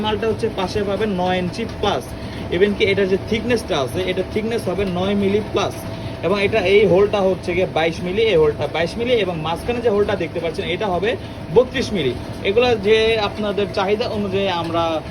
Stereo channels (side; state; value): both; identical; correlation 1.00